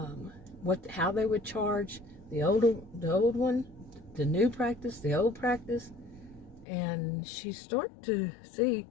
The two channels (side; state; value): right; drops out; at 6.7 s